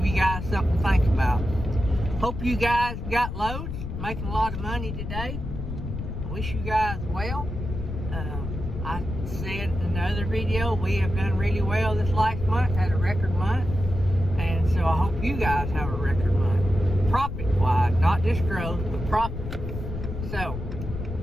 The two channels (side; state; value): left; noise; rumble, 6 dB below the sound